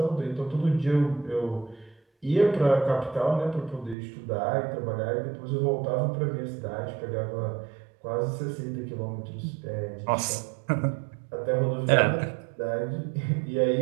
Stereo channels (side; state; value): left; drops out; at 4.0 s